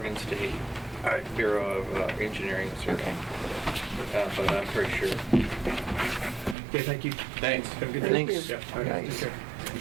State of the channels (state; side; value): drops out; left; at 6.6 s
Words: State Bureau of Engineering Survey. But I'm pretty sure. Okay, thank you. Thanks. Have a good day. Thanks. Yeah, all right, take care.